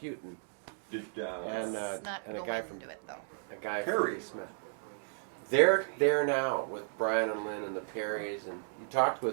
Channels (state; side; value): silent; left; digital silence